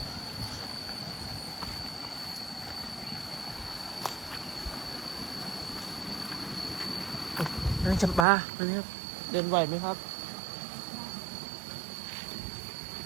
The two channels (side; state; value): left; drops out; at 8.2 s